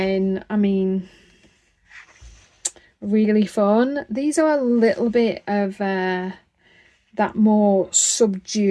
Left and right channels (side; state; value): both; identical; correlation 1.00